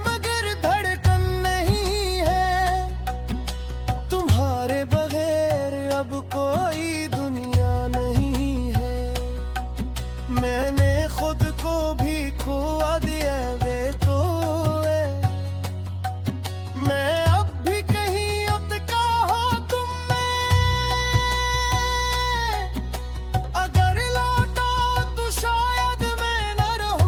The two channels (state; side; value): identical; both; correlation 1.00